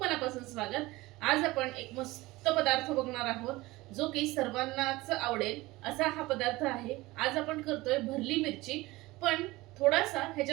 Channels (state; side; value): quieter; left; 20.1 dB